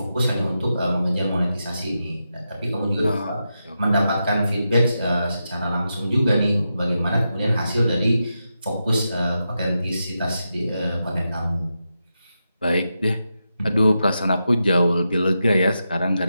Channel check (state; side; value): inverted; both; correlation -0.88